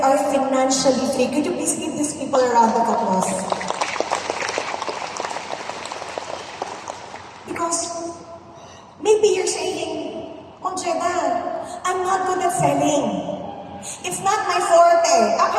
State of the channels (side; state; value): both; identical; correlation 1.00